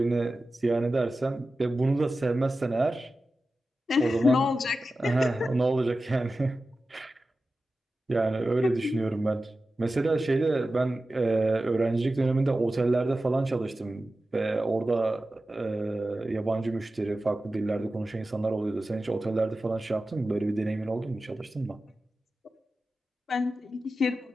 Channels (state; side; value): normal; both; correlation 0.94